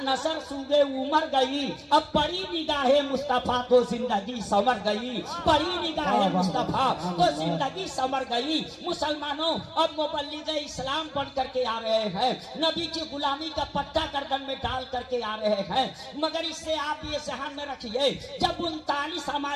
नसर सूगे उमर गई। अब बड़ी निगाहे मुस्तफा तो जिंदगी संवर गई, बड़ी निगाहे मुस्तफा तो जिंदगी संवर गई। मुसलमानों अब मुबल्लिग इस्लाम बन करके आ रहे हैं, नबी की गुलामी का पट्टा गर्दन में डाल करके आ रहे हैं। मगर इससे आप ये ध्यान में रखिए, जब 39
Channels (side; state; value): both; identical; correlation 1.00